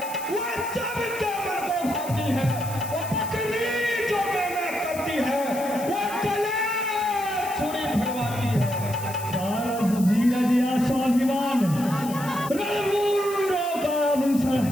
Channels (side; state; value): left; noise; hiss, 14 dB below the sound